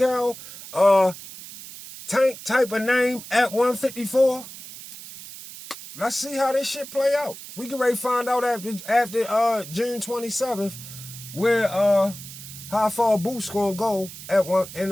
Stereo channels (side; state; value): right; noise; hiss, 14 dB below the sound